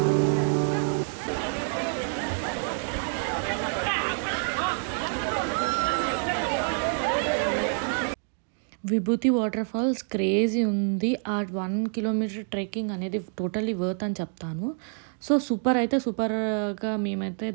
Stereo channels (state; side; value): silent; left; 55 dB below the other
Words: విభూతి వాటర్ ఫాల్స్ క్రేజీ ఉంది. ఆ 1 కిలోమీటర్ ట్రెక్కింగ్ అనేది టోటల్లీ వర్త్ అని చెప్తాను. సో సూపర్గా మేమైతే